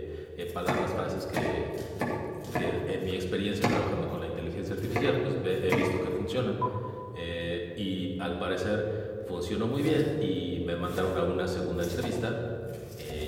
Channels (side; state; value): both; identical; correlation 1.00